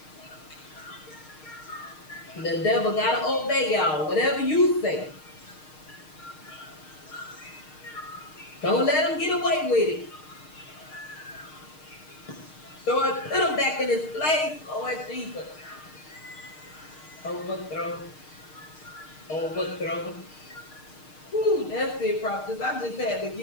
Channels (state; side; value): late; right; 6.5 ms